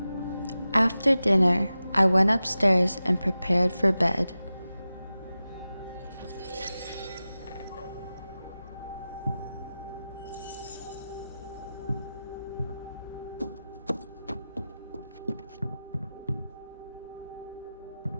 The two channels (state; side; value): inverted; both; correlation -0.94